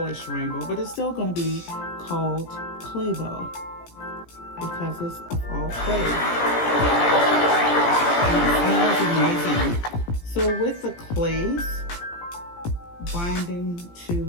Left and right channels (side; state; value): right; late; 17 ms